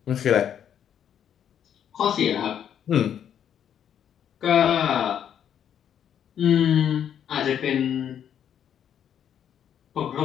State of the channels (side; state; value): right; quieter; 9.2 dB